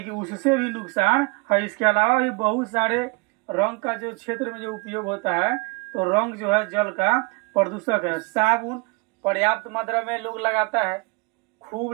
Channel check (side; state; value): left; quieter; 28.2 dB